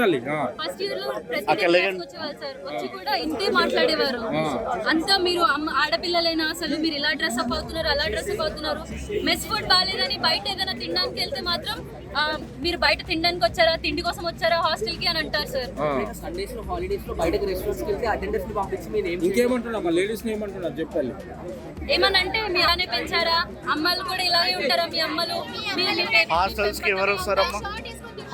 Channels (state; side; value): identical; both; correlation 1.00